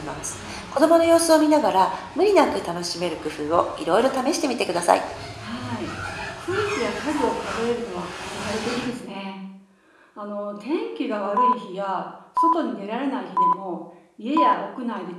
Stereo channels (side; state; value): both; identical; correlation 1.00